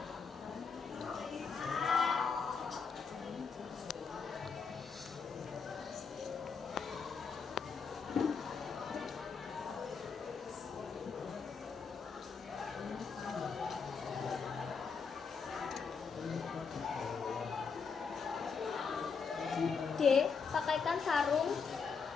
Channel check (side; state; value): right; quieter; 5.5 dB